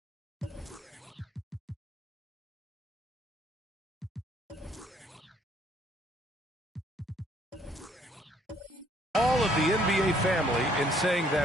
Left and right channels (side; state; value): both; normal; correlation 0.64